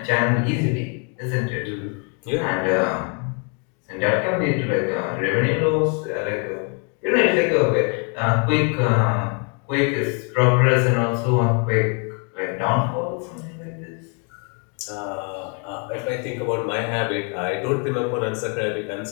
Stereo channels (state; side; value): quieter; right; 38.1 dB